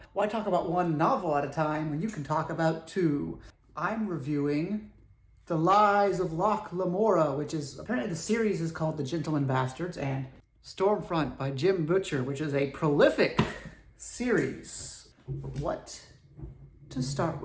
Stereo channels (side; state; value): both; identical; correlation 1.00